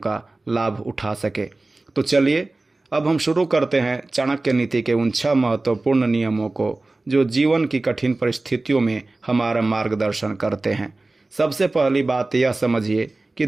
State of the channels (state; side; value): quieter; left; 3.1 dB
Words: लाभ उठा सके। तो चलिए अब हम शुरू करते हैं चाणक्य नीति के उन 6 महत्वपूर्ण नियमों को, जो जीवन की कठिन परिस्थितियों में हमारा मार्गदर्शन करते हैं। सबसे पहली बात यह समझिए कि